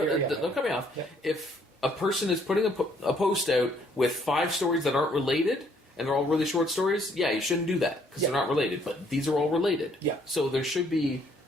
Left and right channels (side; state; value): both; normal; correlation 0.66